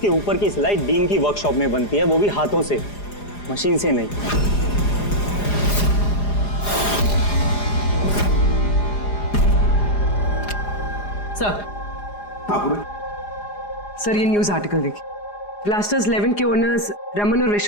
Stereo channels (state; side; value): late; right; 4.9 ms